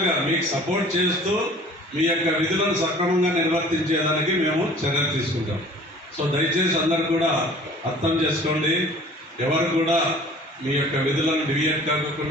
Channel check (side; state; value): both; normal; correlation 0.48